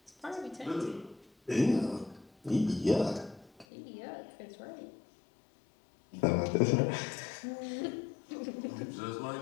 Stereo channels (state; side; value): drops out; right; at 3.7 s